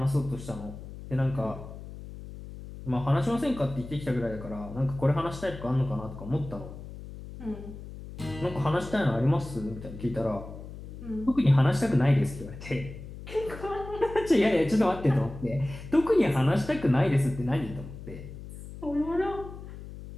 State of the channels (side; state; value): left; noise; hum, 13 dB below the sound